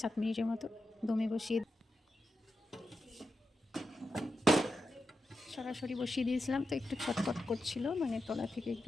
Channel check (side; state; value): both; normal; correlation 0.88